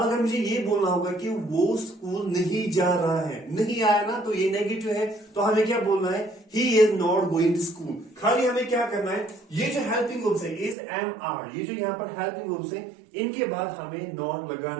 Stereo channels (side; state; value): left; drops out; at 10.8 s